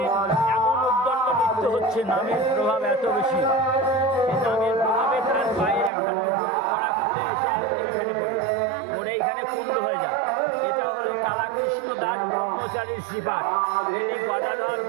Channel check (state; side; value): drops out; left; at 5.9 s